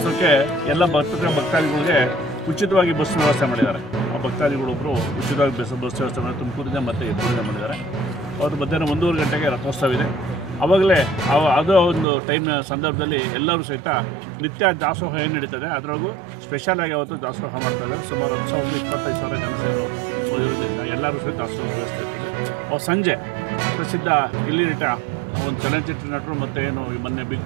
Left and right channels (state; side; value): drops out; left; at 12.1 s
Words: ಎಲ್ಲ ಭಕ್ತಾದಿಗಳಿಗೆ ಉಚಿತವಾಗಿ ಬಸ್ ವ್ಯವಸ್ಥೆ ಮಾಡಿದ್ದಾರೆ. ಆ ಭಕ್ತಾದಿಗಳೊಬ್ಬರು ಉಚಿತವಾಗಿ ಬಸ್ ವ್ಯವಸ್ಥೆ ಮಾಡಿ ತುಮಕೂರಿಂದ ಮತ್ತು ಎತ್ತೂರಿಂದ ಮಾಡಿದ್ದಾರೆ. ಅವತ್ತು ಮಧ್ಯಾಹ್ನ 1:30 ಗಂಟೆಗೆ ರಥೋತ್ಸವ ಇದೆ. ಆವಾಗಲೇ ಅದು ಒಂದು ಟೈಮ್ನ ಸಂದರ್ಭದಲ್ಲಿ ಎಲ್ಲರೂ ಸಹಿತ ನಿತ್ಯ ದಾಸೋಹ ಏನು ನಡೀತದೆ ಅದರೊಳಗೂ ಸ್ಪೆಷಲಾಗಿ ಅವತ್ತು ದಾಸೋಹ ಮಾಡ್ತಾಯಿದ್ದಾರೆ. ಸುಮಾರು 10,000-25,000 ಜನ ಸೇರೋದ್ರಿಂದ ಎಲ್ಲರೂ ಸಹಿತ ದಾಸೋಹ ವ್ಯವಸ್ಥೆ ಇರ್ತದೆ. ಸಂಜೆ ಪ್ರಸಿದ್ಧ ಗಿಲ್ಲಿ ನಟ ಒಂದು ಚಲನಚಿತ್ರ ನಟರು ಮತ್ತು ಏನು ಮೊನ್ನೆ ಬಿಗ್